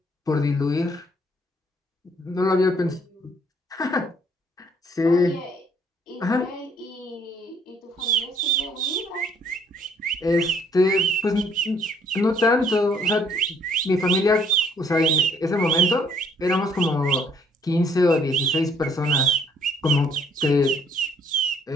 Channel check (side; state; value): both; normal; correlation 0.63